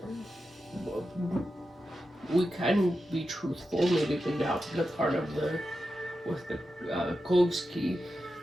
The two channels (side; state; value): both; normal; correlation 0.90